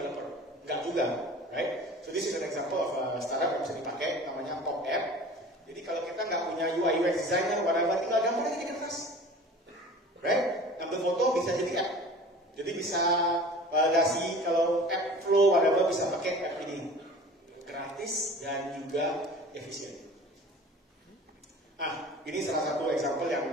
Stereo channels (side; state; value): both; normal; correlation 0.41